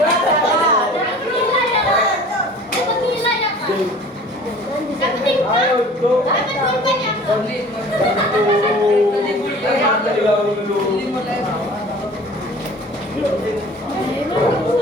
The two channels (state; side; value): normal; both; correlation 0.45